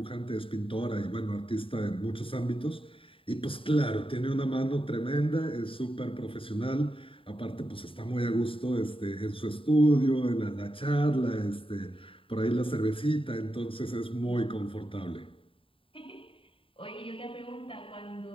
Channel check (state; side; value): late; right; 0.26 ms